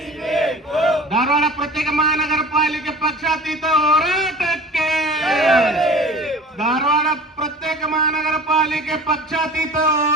ಬೇಕು ಧಾರವಾಡ ಪ್ರತ್ಯೇಕ ಮಹಾನಗರ ಪಾಲಿಕೆ ಪಕ್ಷಾತೀತ ಹೋರಾಟಕ್ಕೆ, ಧಾರವಾಡ ಪ್ರತ್ಯೇಕ ಮಹಾನಗರ ಪಾಲಿಕೆ ಪಕ್ಷಾತೀತ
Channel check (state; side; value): normal; both; correlation 0.41